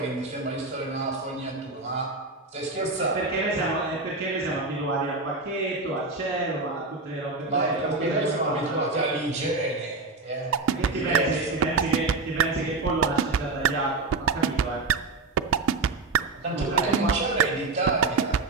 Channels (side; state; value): left; quieter; 3.8 dB